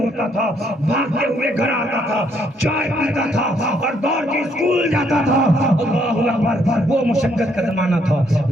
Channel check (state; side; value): normal; both; correlation 0.70